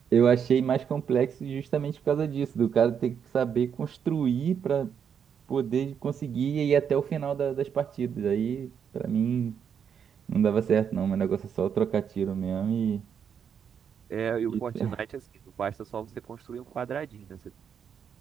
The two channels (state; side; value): quieter; left; 7.6 dB